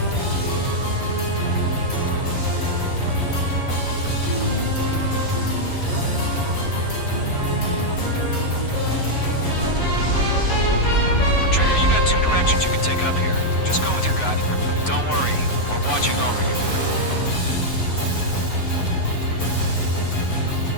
Trigger, you got two directions you can take up here. Just go with your gut. Don't worry. We're watching over you.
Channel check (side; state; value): right; late; 9.5 ms